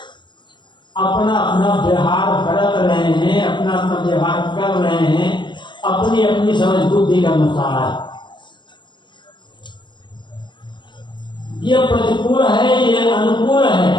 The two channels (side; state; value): right; late; 0.23 ms